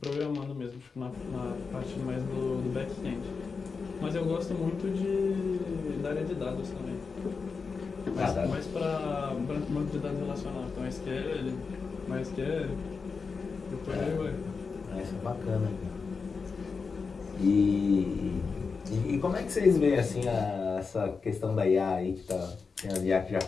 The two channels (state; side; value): quieter; right; 5.0 dB